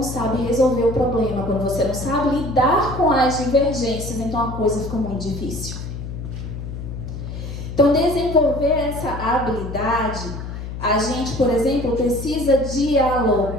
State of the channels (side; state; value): left; noise; hum, 8 dB below the sound